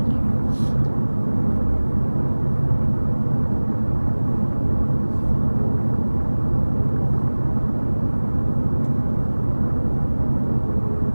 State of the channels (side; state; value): both; inverted; correlation -1.00